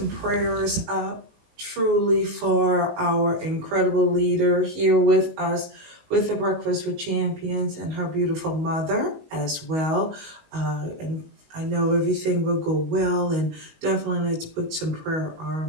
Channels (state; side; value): late; left; 19 ms